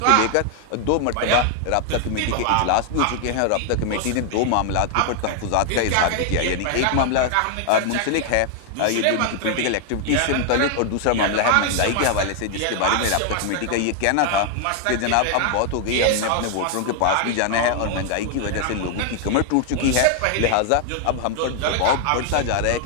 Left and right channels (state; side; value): different; both; correlation 0.00